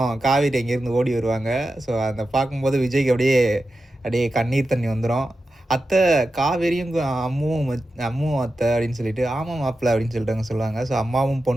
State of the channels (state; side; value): normal; both; correlation 0.91